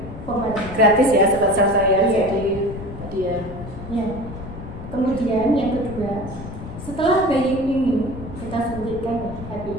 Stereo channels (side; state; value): left; noise; rumble, 11 dB below the sound